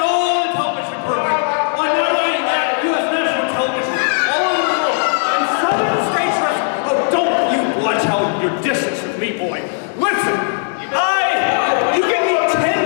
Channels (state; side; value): silent; right; digital silence